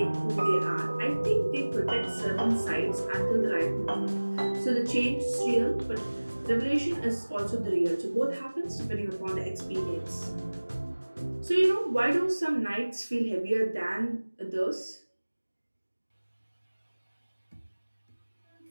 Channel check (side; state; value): both; inverted; correlation -1.00